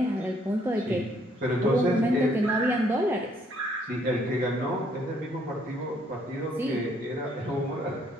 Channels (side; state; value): both; normal; correlation 0.67